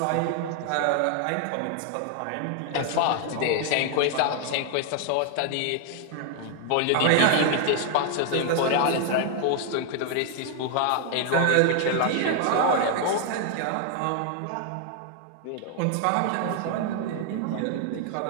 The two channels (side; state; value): both; different; correlation 0.00